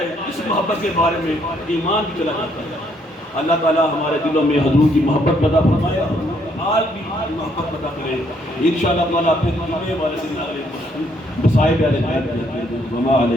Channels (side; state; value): both; normal; correlation 0.70